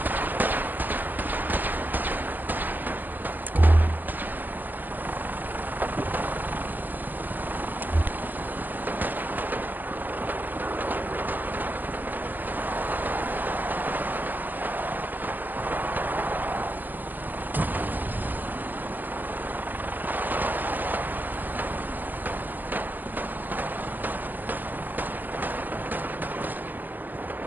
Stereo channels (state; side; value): late; left; 0.087 ms